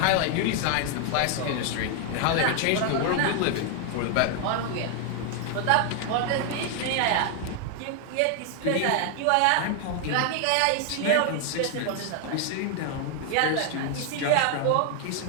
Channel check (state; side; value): different; both; correlation 0.00